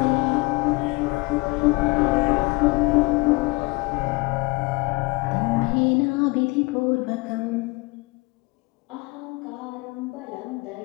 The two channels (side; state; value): right; quieter; 25.3 dB